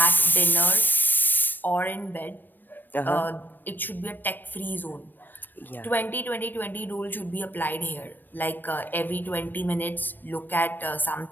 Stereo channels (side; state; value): right; late; 0.092 ms